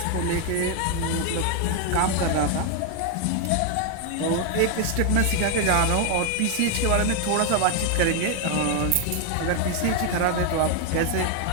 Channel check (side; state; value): both; different; correlation 0.01